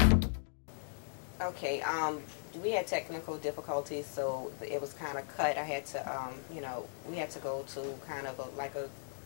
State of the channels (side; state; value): right; silent; digital silence